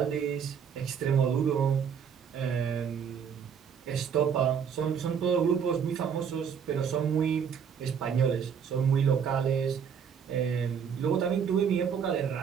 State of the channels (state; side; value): quieter; left; 7.3 dB